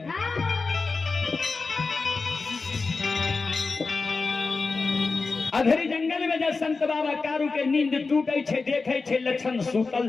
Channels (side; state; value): right; quieter; 4.2 dB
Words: अधरी जंगल में जब संत बाबा कारू के नींद टूटे छे देखे छे लक्षण